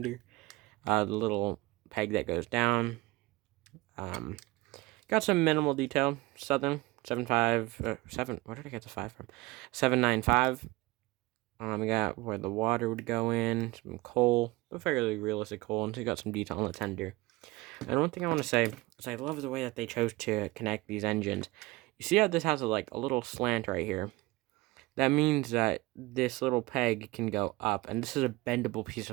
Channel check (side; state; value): left; quieter; 21.2 dB